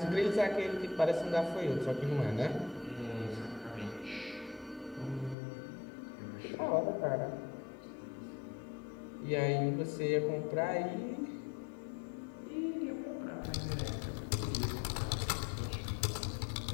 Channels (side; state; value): right; drops out; at 5.4 s